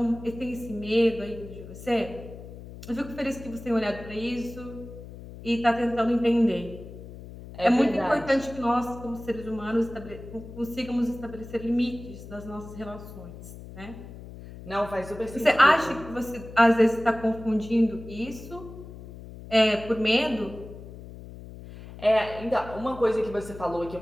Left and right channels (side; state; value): left; noise; hum, 14 dB below the sound